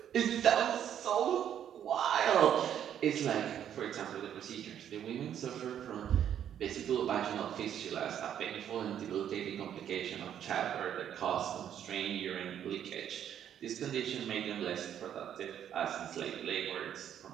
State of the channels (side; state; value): left; quieter; 9.7 dB